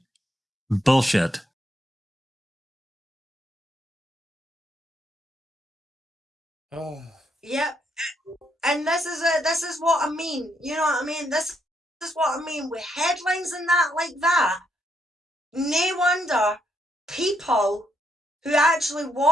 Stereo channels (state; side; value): normal; both; correlation 0.75